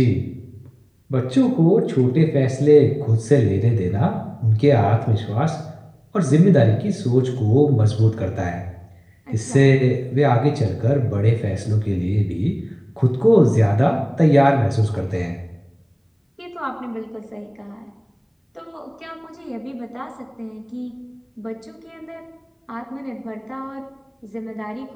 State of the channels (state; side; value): identical; both; correlation 1.00